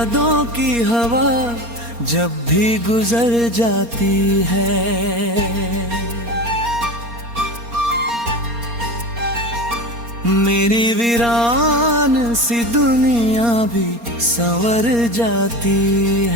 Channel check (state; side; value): late; left; 4.3 ms